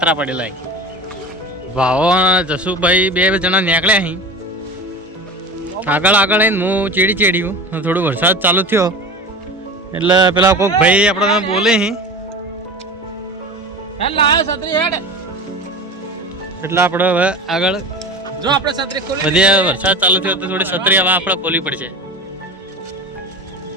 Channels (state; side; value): normal; both; correlation 0.32